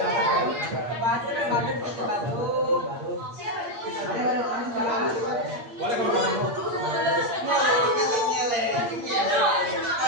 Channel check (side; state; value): left; late; 8.6 ms